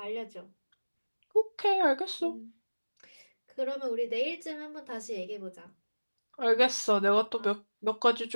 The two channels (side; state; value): both; inverted; correlation -1.00